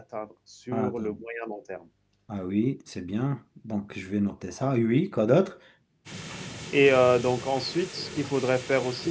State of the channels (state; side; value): identical; both; correlation 1.00